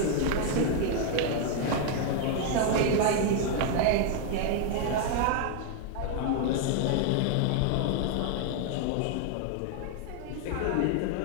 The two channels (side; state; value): both; different; correlation 0.00